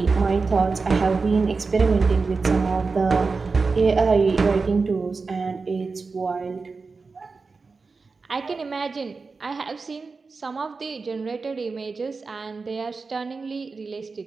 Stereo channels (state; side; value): quieter; left; 4.3 dB